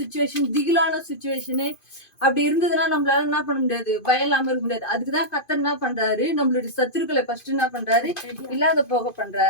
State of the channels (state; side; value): late; right; 2.5 ms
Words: திகிலான சுச்சுவேஷனு அப்படி இருந்ததுன்னா நம்மளால என்ன பண்ண முடியாது, பயம் இல்லாம இருக்க முடியாது. அதுக்குதான் கர்த்தர் என்ன பண்றாரு, நம்மளுடைய சத்துருக்களை ஃபர்ஸ்ட் என்ன பண்றாரு, இல்லாத போக